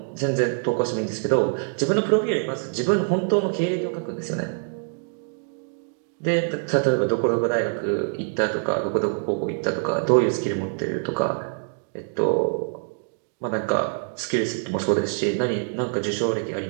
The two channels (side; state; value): left; silent; 62 dB below the other